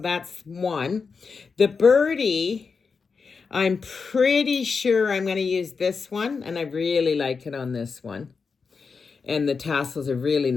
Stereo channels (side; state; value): right; quieter; 5.2 dB